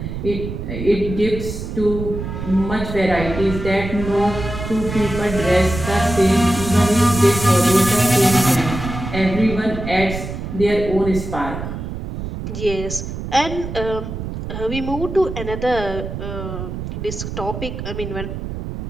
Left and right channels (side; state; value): right; noise; rumble, 7 dB below the sound